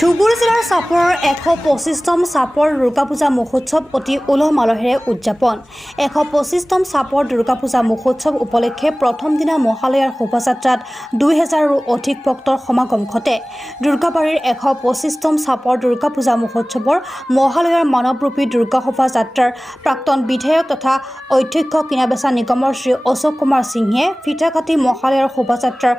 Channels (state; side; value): normal; both; correlation 0.98